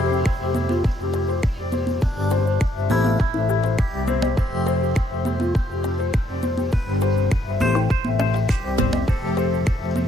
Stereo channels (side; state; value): both; normal; correlation 0.73